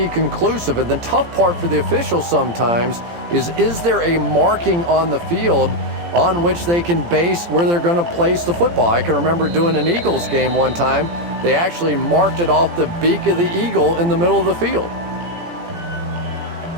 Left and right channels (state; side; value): late; left; 17 ms